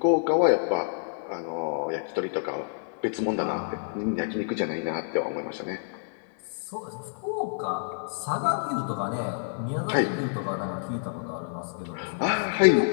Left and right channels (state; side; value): silent; right; digital silence